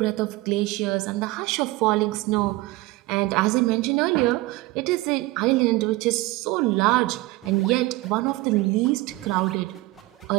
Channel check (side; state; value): left; quieter; 20.0 dB